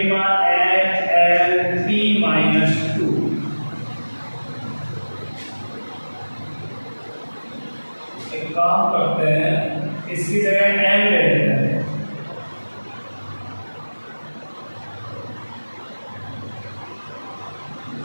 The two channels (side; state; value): both; inverted; correlation -1.00